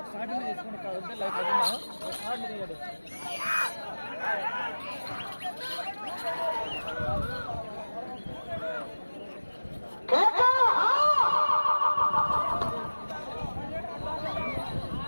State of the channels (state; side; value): inverted; both; correlation -1.00